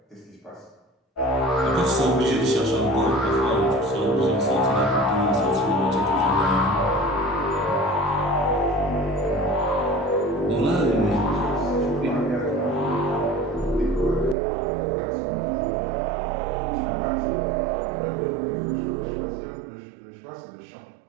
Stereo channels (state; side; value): drops out; left; at 14.4 s